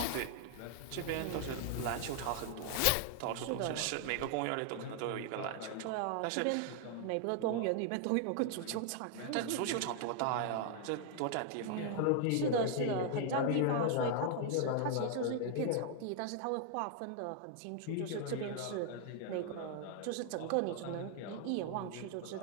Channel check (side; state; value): both; different; correlation 0.00